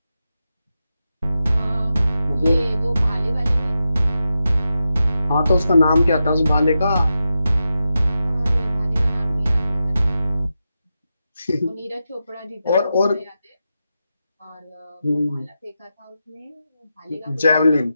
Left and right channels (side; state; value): both; inverted; correlation -0.89